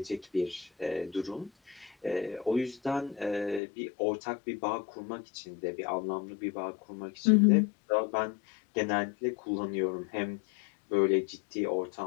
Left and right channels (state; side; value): drops out; right; at 3.6 s